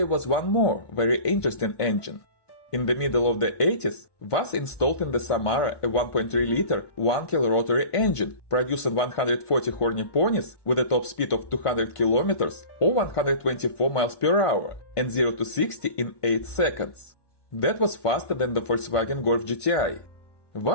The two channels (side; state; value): right; late; 1.5 ms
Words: was one more very interesting engine. In the middle of the 80s, VAZ installed in the Samara a 1.3-liter 1-kil rotary engine, producing 140 horny ponies with a top speed of 200 km or 124 miles per hour and 0 to 60 in 8 seconds. That was faster than the Volkswagen Golf GTI.